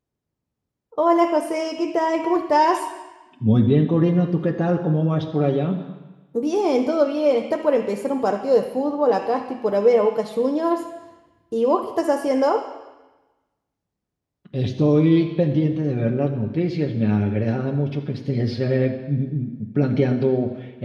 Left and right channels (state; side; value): identical; both; correlation 1.00